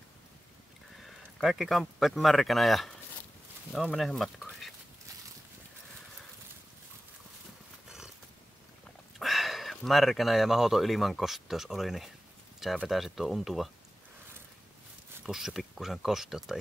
Kaikki kamppeet märkänä ja no menehän matkoihin. Märkänä ja mahoton ilmankosteus oli, niin sä vetäisit tuo untuva pussi pikkusen kosteutta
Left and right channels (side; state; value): both; normal; correlation 0.95